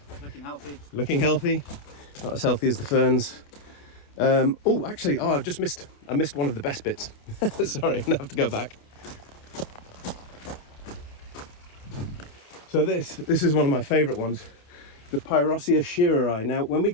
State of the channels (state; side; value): late; right; 28 ms